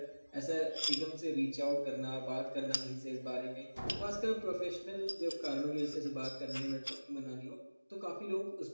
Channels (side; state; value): both; inverted; correlation -1.00